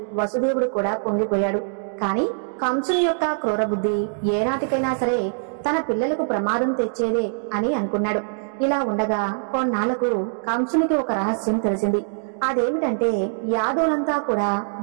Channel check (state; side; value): silent; left; digital silence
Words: వసుదేవుడు కూడా పొంగిపోయాడు. కాని కంసుని యొక్క క్రూర బుద్ధి ఏనాటికైనా సరే తన పిల్లలకు ప్రమాదం తెచ్చేదే అని అనుకున్నాడు. ఇలా ఉండగా కొన్నాళ్లకు కంసునికి ఒక రహస్యం తెలిసింది. అదేమిటంటే యాదవులంతా కూడా